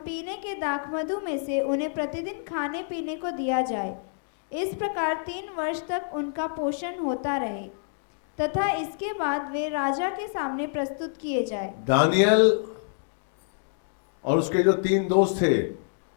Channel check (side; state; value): right; silent; digital silence